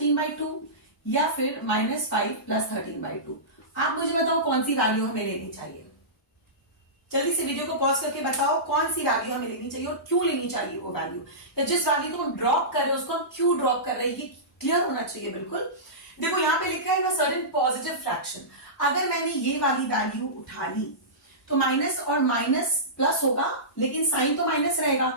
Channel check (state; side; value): normal; both; correlation -0.19